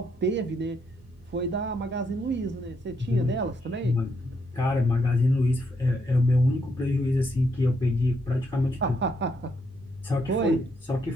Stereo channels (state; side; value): normal; both; correlation 0.76